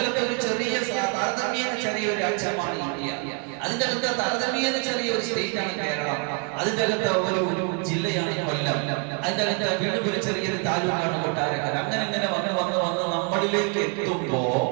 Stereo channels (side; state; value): left; quieter; 36.0 dB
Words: അകത്ത് ഒരു ചെറിയ താരതമ്യേന ചെറിയൊരു അംശമാണ് ഇന്ത്യ. അതിന്റെ അകത്ത് താരതമ്യേന ചെറിയൊരു സ്റ്റേറ്റ് ആണ് കേരളം. അതിന്റെ അകത്ത് ഒരു ജില്ലയാണ് കൊല്ലം. അതിന്റെ അകത്ത് വീണ്ടും ഒരു ചെറിയൊരു താലൂക്കാണ് കൊട്ടാരക്കര. അങ്ങനെ വന്ന് നമ്മളിലേക്ക് എത്തുമ്പോ